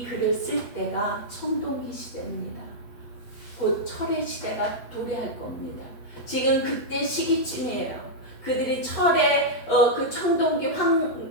글을 쓸 때가 청동기 시대입니다. 곧 철의 시대가 도래할 겁니다. 지금 그때 시기쯤이에요. 그들이 철의 그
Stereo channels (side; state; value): right; late; 8.2 ms